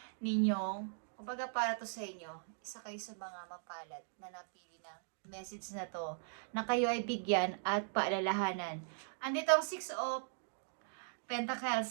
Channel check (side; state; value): left; silent; digital silence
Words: ninyong, kumbaga para to sa inyo, isa kayo sa mga mapalad na napili ng message na to, na kayo ay bigyan at paalalahanan. Andito ang 6 of